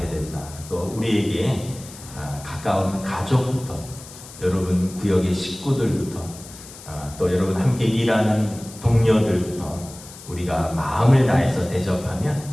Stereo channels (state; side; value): noise; left; hiss, 17 dB below the sound